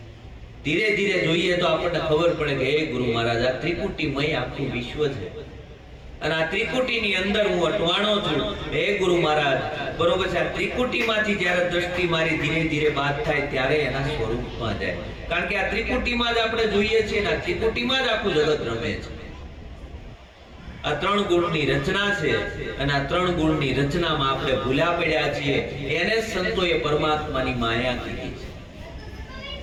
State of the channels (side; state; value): both; identical; correlation 1.00